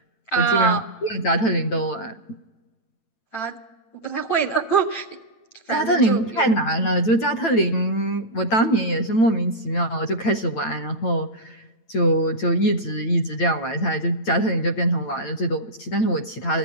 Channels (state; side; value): late; right; 9.0 ms